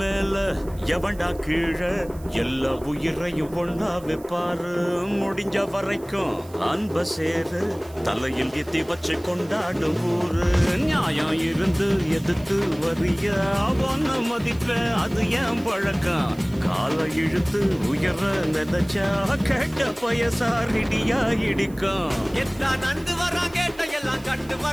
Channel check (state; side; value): noise; right; hiss, 23 dB below the sound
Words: எவன்டா கீழே எல்லா உயிரையும் ஒண்ணா வைப்பாரு. முடிஞ்ச வரைக்கும் அன்ப சேரு தலையில் எத்தி வச்சு கொண்டாடும் ஊரு. நியாயம் இருந்து எதிர்த்து வரிய அவன மதிப்ப அது ஏன் பழக்கம். காலை இழுத்து உயர நினைச்சா கேட்ட பயசாரிடியா இடிக்கும். எத்தான் நந்து வரான் கேட்ட எல்லாம் கண்டு